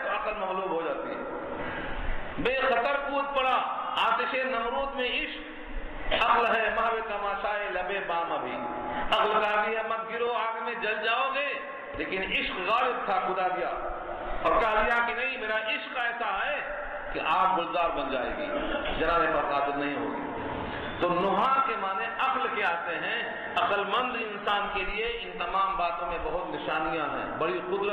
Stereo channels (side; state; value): both; identical; correlation 1.00